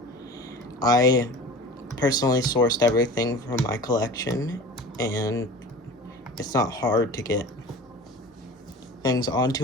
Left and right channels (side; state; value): both; normal; correlation 0.38